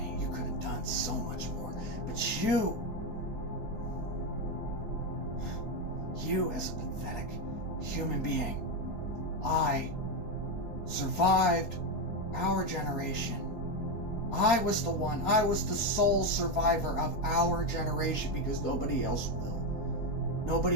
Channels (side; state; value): right; late; 4.4 ms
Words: You could have done so much more. But you as a pathetic human being, I survived our generation. I was the sole survivor of our generation because nobody else will.